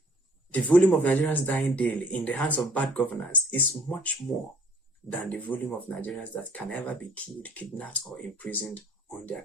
The volume of Nigerians dying daily in the hands of bad governance is much more than the volume of Nigerians that can ever be killed, kidnapped, or imprisoned on the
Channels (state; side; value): normal; both; correlation 0.56